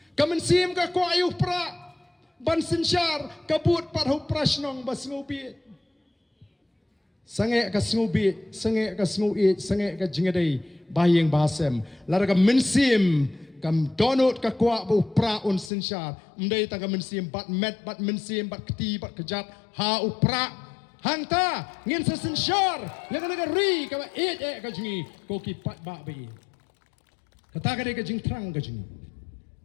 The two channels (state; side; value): drops out; right; at 15.7 s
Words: kamen sim ka kwa yu pra ban sinsyar kabut pat ho prasnong bas ngobi sange ka snubi sange ka snui sange ka jingadei bayeng basem lara ka mensim kam donut ka kwa bu pra un sinshar mdei ta ka mensim bat met bat mensim bat kti bat kejat ha u pra hangta ngin sa sinshar lega ri ka ka jingi ko ki pat ba bi kata ka de ka jing trang ka jingi